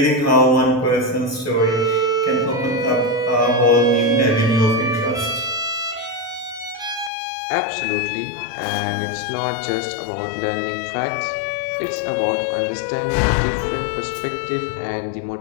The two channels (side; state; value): right; drops out; at 7.1 s